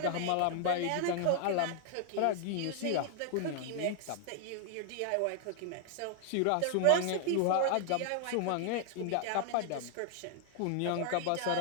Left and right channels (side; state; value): both; different; correlation 0.00